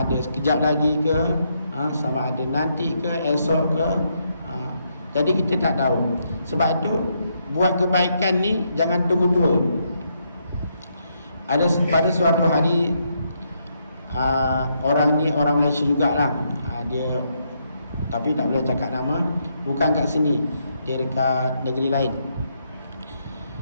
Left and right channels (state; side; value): inverted; both; correlation -0.77